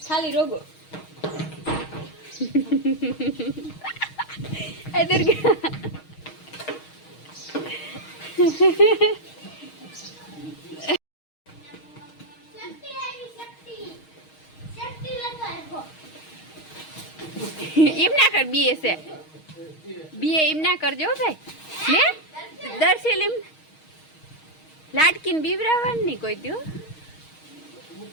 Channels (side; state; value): right; late; 6.4 ms